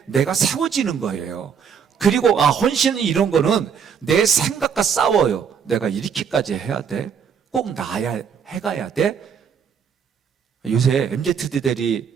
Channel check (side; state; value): left; quieter; 7.0 dB